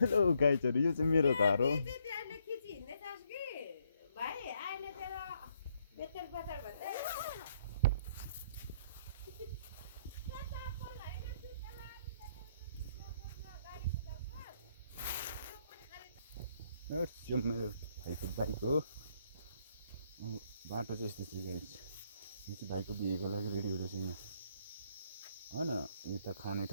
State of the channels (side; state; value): both; inverted; correlation -0.71